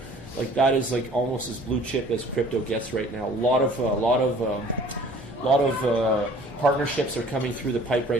That is almost as blue chip as crypto gets right now. A lot of partnerships are coming through the pipe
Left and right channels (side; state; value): both; normal; correlation 0.51